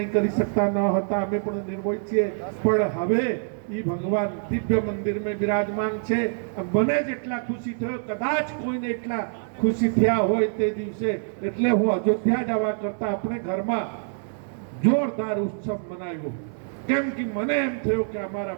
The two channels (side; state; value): left; silent; 61 dB below the other